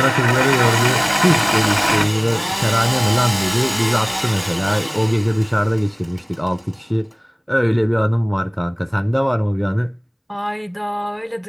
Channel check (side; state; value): both; identical; correlation 1.00